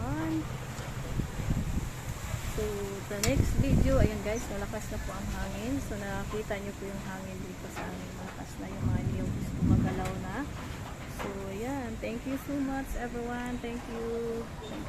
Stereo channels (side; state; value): both; identical; correlation 1.00